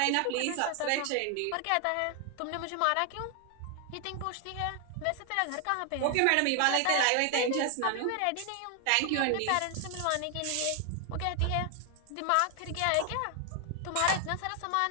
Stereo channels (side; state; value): both; different; correlation 0.00